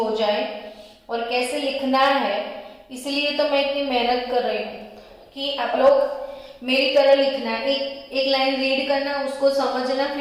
जाए। और कैसे लिखना है इसलिए तो मैं इतनी मेहनत कर रही हूँ कि आप लोग मेरी तरह लिखना, एक लाइन रीड करना, उसको समझना,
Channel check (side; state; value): both; identical; correlation 1.00